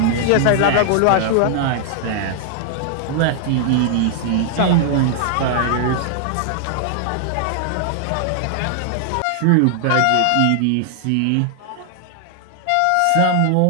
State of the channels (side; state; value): both; different; correlation -0.01